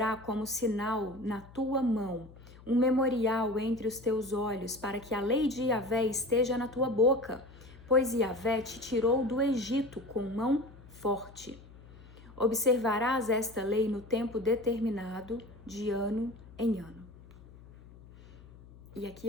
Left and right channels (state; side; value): noise; left; hum, 21 dB below the sound